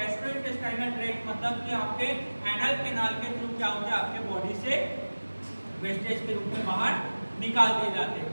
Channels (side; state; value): both; inverted; correlation -1.00